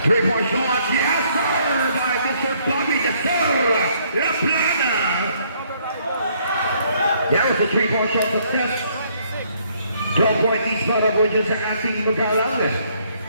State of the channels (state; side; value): inverted; both; correlation -0.67